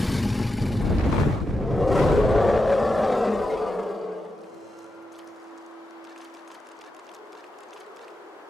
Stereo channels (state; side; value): normal; both; correlation 0.88